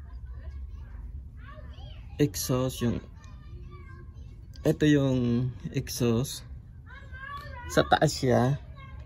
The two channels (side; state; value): both; identical; correlation 1.00